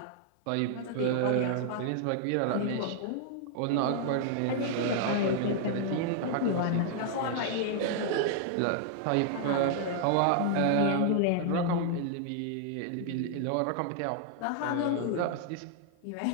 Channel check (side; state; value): both; different; correlation -0.01